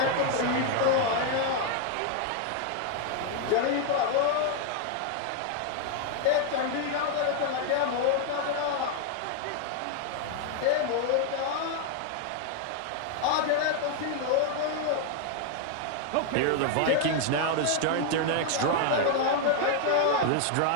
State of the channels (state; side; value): different; both; correlation 0.00